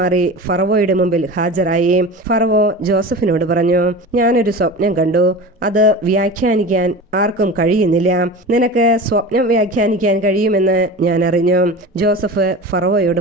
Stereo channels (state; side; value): normal; both; correlation 0.32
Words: ഫറവോയുടെ മുമ്പിൽ ഹാജരായി. ഫറവോ ജോസഫിനോട് പറഞ്ഞു, ഞാനൊരു സ്വപ്നം കണ്ടു. അത് വ്യാഖ്യാനിക്കാൻ ആർക്കും കഴിയുന്നില്ല. നിനക്ക് സ്വപ്നം വ്യാഖ്യാനിക്കാൻ കഴിയുമെന്ന് ഞാൻ അറിഞ്ഞു. ജോസഫ് ഫറവോയോട്